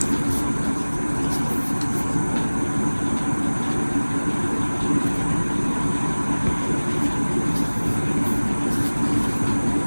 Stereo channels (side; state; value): both; inverted; correlation -1.00